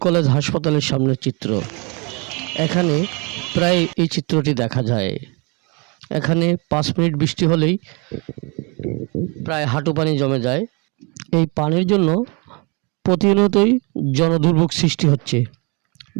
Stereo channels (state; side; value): quieter; left; 31.1 dB